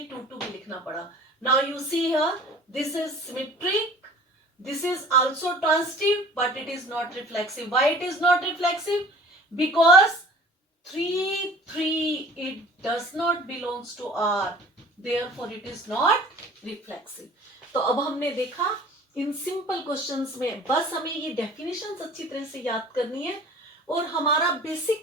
2 2 भी लिखना पड़ा। Now you see here, this is symmetric, this is also transitive, but it is not reflexive. Why it is not reflexive? Because 3 3, it does not belongs to R, therefore it is not reflexive. तो अब हमने देखा in simple questions में बस हमें ये definitions अच्छी तरह से याद करनी है और हमारा बेसिक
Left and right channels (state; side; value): normal; both; correlation 0.46